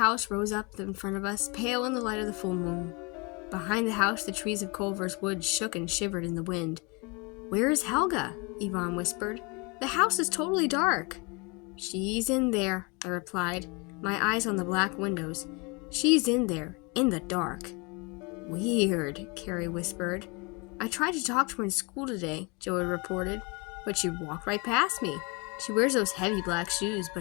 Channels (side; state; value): right; quieter; 29.3 dB